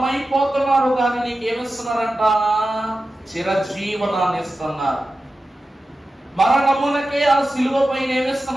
కానీ నీకేమిస్తున్నారంట? చిరజీవనాన్ని ఇస్తున్నారు. మరణమునకే ఆ సిలువ పైన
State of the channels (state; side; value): normal; both; correlation 0.93